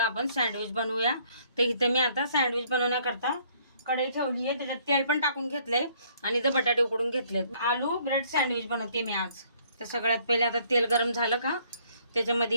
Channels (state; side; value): inverted; both; correlation -0.63